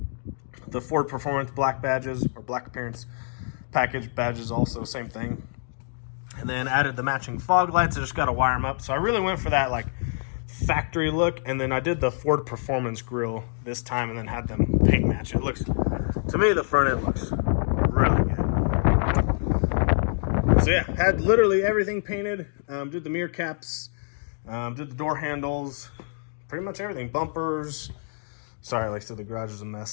the Ford Performance black badges, or black appearance package badges, also same thing. And then added the matching fog lights. I just got to wire them up. So I really went for that like factory look. And then I did the Ford Performance grille this time and then had them paint match. It looks, to me, the front end looks really good. So yeah, had literally everything painted. Did the mirror caps, did the door handles, pretty much everything. Bumpers. Sorry, like I said, the garage is a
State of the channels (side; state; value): right; silent; digital silence